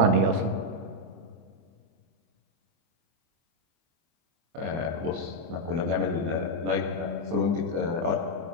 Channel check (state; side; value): late; left; 24 ms